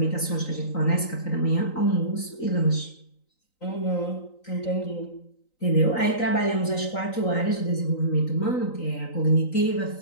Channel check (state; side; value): late; right; 3.9 ms